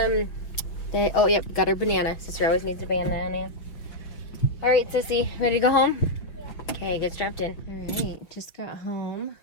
yep, got her banana. Sister always needs a banana. All right, sissy, ready to go home? Yeah. Okay, get strapped in. All right, just got home.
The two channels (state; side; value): late; right; 5.7 ms